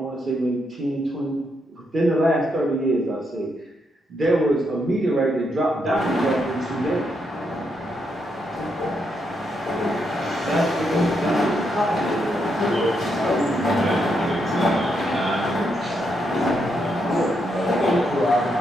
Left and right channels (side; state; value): both; normal; correlation 0.79